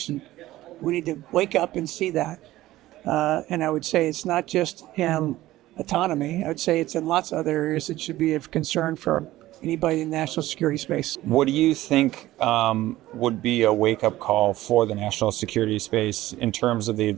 We need to wake up and see that. And I would say it's not just in autonomy. I would say it's in lots of other areas that should be of concern for anybody in the national security space. What do you think would be a wake-up call for the national security space in terms of the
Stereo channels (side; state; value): left; quieter; 16.0 dB